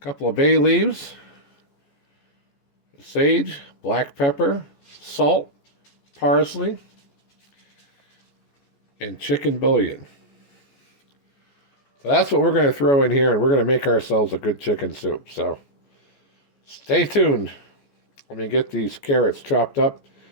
couple of bay leaves, sage, black pepper, salt, parsley, and chicken bouillon. So that's what we're going to throw in here, and we're going to make ourselves a good chicken soup. So stay tuned. Let me get these carrots chopped up.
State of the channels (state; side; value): late; right; 14 ms